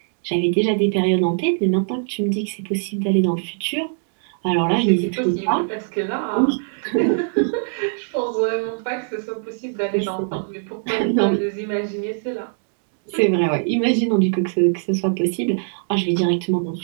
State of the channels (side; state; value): left; silent; digital silence